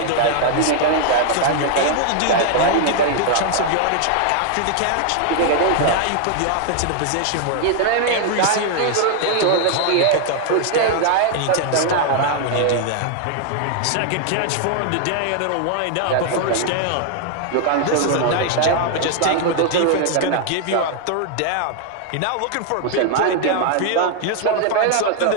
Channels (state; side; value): different; both; correlation 0.00